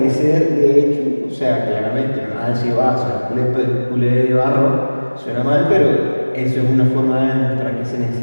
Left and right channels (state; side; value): inverted; both; correlation -1.00